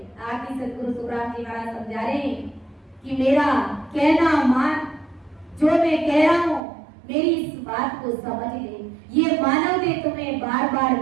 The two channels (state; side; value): drops out; left; at 6.6 s